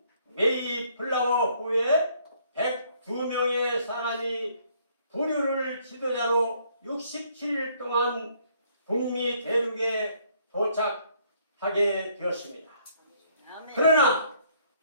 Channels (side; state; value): both; inverted; correlation -0.65